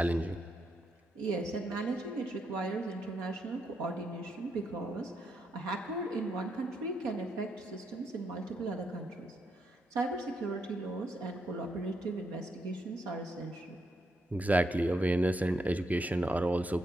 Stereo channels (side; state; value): both; normal; correlation 0.79